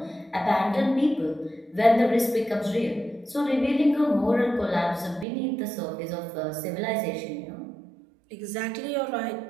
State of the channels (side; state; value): left; drops out; at 5.2 s